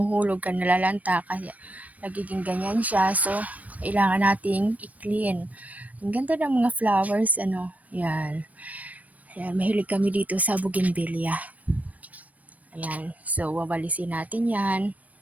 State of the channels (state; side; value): late; left; 0.071 ms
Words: ka, nalalanta, kaya nagiging ganyan siya. So, kailangan nating i-clean. Ang ganda ng mga flowers, ano. Yan. Ayan, mahilig kami dito sa bougainvillea. Ayan. So, wawalisin natin yan.